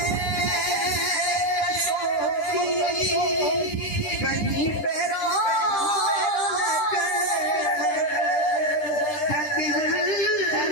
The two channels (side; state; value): right; late; 10 ms